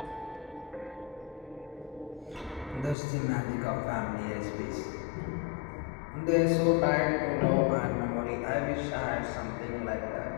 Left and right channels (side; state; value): right; drops out; at 3.0 s